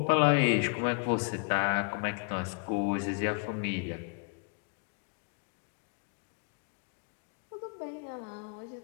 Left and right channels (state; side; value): quieter; right; 38.8 dB